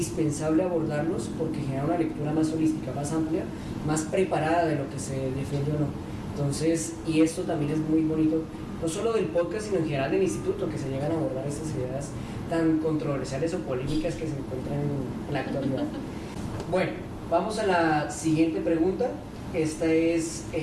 abordarlos porque genera una lectura más holística, más amplia, más preparada de lo que se defiende o no. Entonces, y esto también es muy bonito, no solo del podcast, sino en general del instituto, que se llegan a abordar estas ideas tan controversiales o polémicas que se encuentran en la actualidad. Bueno, vamos a la siguiente pregunta. Esta es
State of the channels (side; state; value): both; identical; correlation 1.00